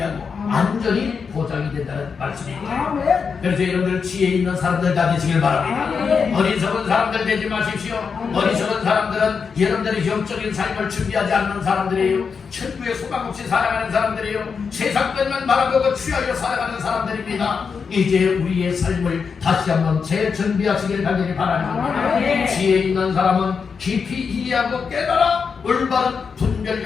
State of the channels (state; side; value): quieter; right; 5.7 dB